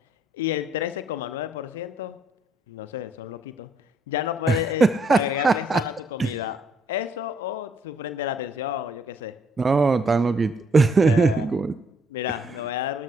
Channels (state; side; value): normal; both; correlation 0.68